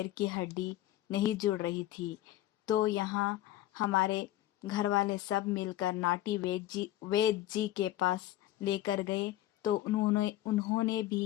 की हड्डी नहीं जुड़ रही थी। तो यहाँ हमारे घर वाले सब मिलकर नाटी वैद्य जी के पास लेकर गए। तो उन्होंने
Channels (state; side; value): quieter; right; 14.4 dB